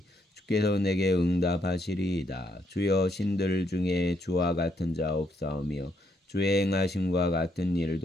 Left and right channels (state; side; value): normal; both; correlation 0.74